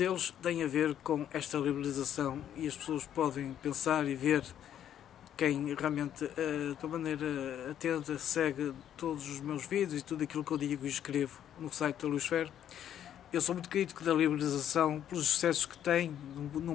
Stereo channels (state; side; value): quieter; right; 10.3 dB